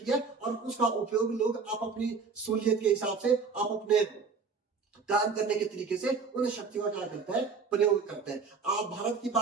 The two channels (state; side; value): quieter; left; 5.0 dB